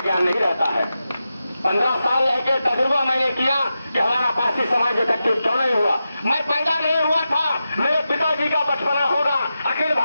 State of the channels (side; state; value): both; inverted; correlation -0.91